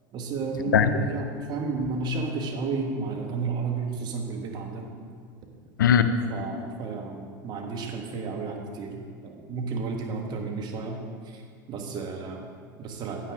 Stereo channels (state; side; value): normal; both; correlation -0.02